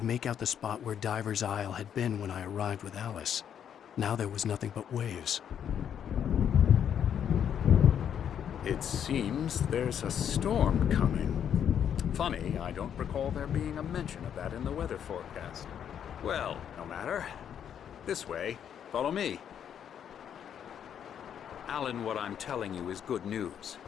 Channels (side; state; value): right; quieter; 8.9 dB